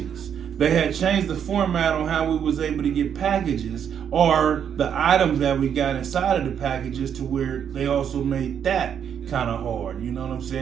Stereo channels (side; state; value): left; quieter; 8.4 dB